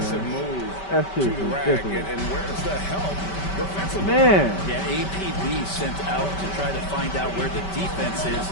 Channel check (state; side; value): late; right; 5.2 ms